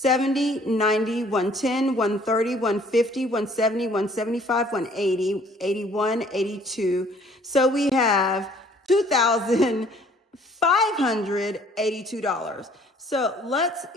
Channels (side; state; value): both; normal; correlation 0.58